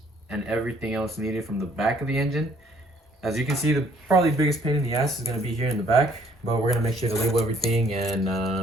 and everything else needed from the back of the engine. As you can see, the probably biggest pain in the ass is going to be here in the back, but we're going to make sure to label everything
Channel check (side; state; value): both; normal; correlation 0.62